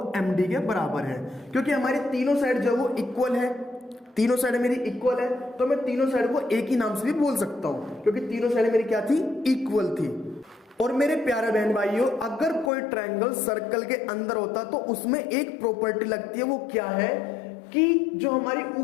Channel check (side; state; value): right; drops out; at 12.7 s